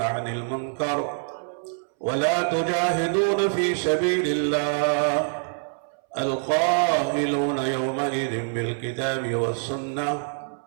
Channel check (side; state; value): left; silent; 61 dB below the other